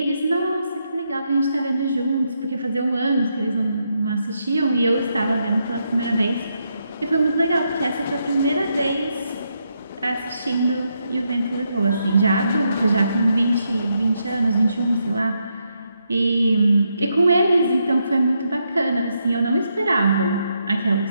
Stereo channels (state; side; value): inverted; both; correlation -0.80